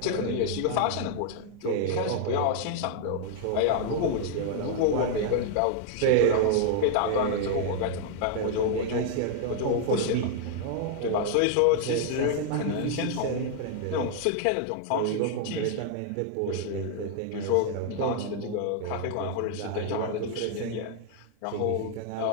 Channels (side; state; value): both; different; correlation 0.00